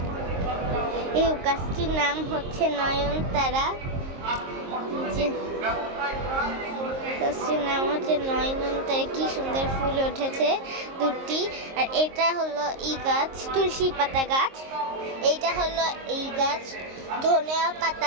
এই গাছটির নাম হচ্ছে নয়নতারা। গাছটির নাম হচ্ছে নয়নতারা। কি সুন্দর ফুল উঠেছে দুটি। আর এটা হলো এই গাছ তুলসী পাতা গাছ। এইটা হলো এই গাছ ধনিয়া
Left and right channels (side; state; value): left; late; 22 ms